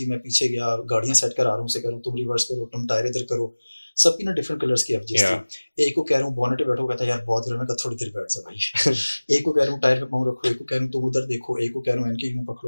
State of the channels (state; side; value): inverted; both; correlation -1.00